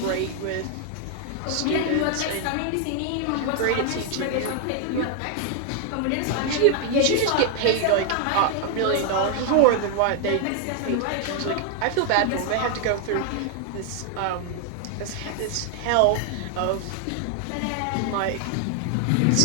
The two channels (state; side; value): different; both; correlation 0.00